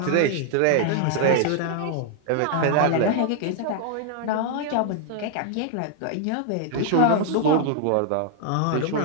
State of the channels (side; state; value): both; different; correlation 0.00